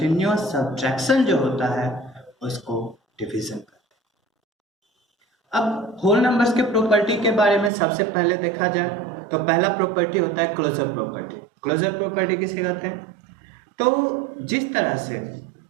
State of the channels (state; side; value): drops out; left; at 7.7 s